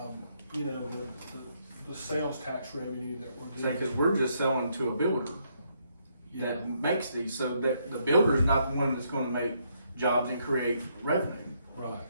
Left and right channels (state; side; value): inverted; both; correlation -0.74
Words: you know, the sales tax revenue that we're Say, getting. cause we're just selling to a builder Yeah, that makes these, so that the builder's not the one that's gonna make jobs and create revenue right.